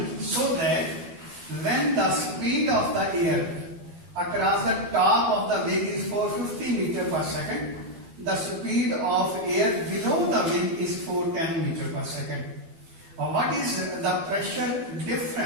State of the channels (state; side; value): late; left; 12 ms